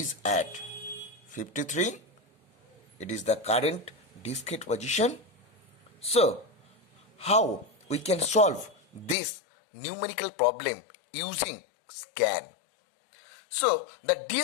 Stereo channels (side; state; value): right; drops out; at 9.2 s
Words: at 53. It is the current disk head position. So, how we can solve this numerical problem using scan? So, the